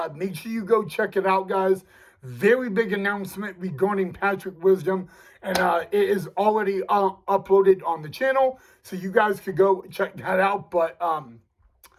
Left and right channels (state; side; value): identical; both; correlation 1.00